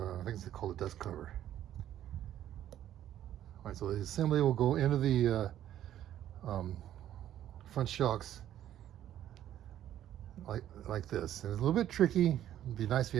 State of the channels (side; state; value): left; quieter; 11.7 dB